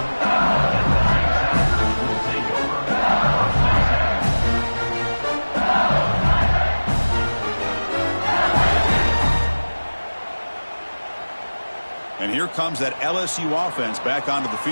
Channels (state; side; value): inverted; both; correlation -1.00